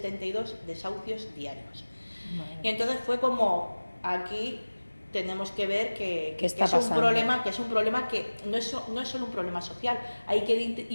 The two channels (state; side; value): inverted; both; correlation -1.00